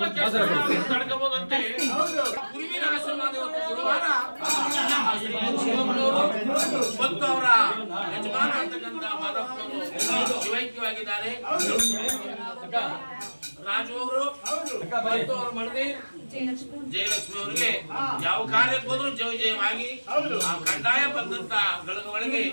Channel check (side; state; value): both; inverted; correlation -1.00